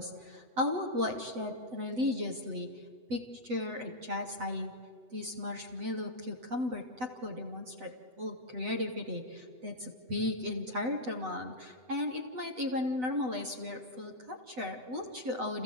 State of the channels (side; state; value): left; late; 7.9 ms